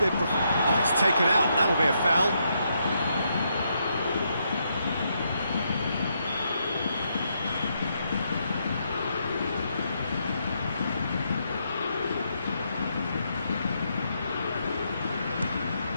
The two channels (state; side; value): inverted; both; correlation -0.78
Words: Oh, it's taken out. That'll be a foul.